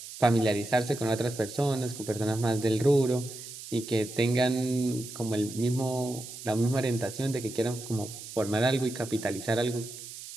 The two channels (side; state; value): right; noise; hiss, 12 dB below the sound